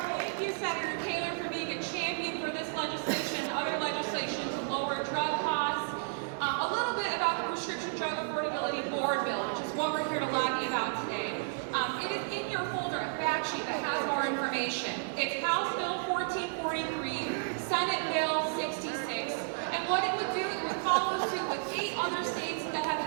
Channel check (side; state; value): left; silent; digital silence